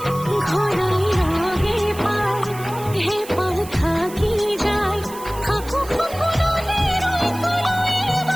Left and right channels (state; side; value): noise; right; hiss, 16 dB below the sound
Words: ঘরাই হে পায় হে পাল থাকি যায়, খাকু খুকুনলে রই কলই